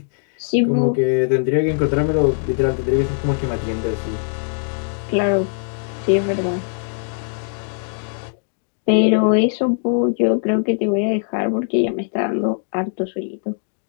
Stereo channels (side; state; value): right; silent; digital silence